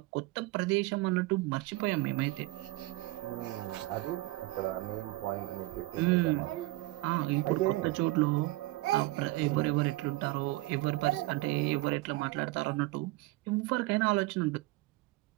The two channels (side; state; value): left; quieter; 20.1 dB